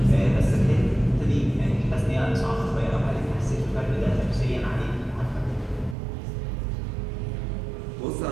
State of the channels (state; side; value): drops out; left; at 6.0 s